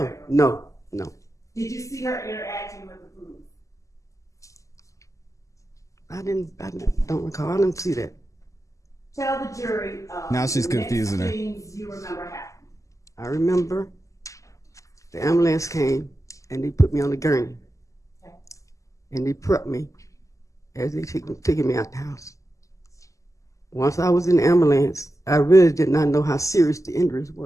No. Did you see her interacting with the police? I don't recall. I didn't see that. Tell the jury. Now she's the next confusing her. things you remember happening. I remember the ambulance came and they put me on the gurney. Okay. And they prepped me as they taking me out the house. Once I was in the ambulance, I really did not know how serious the injuries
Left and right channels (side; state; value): right; late; 0.16 ms